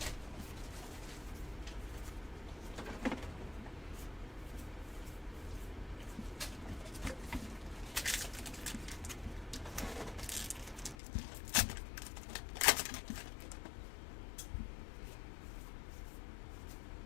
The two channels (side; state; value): right; drops out; at 11.0 s